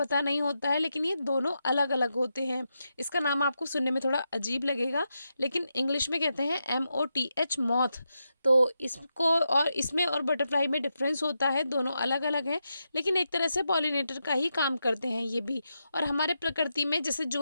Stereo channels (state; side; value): inverted; both; correlation -0.86